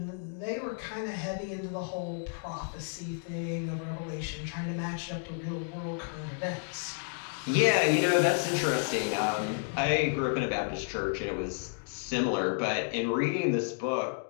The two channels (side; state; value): right; silent; 57 dB below the other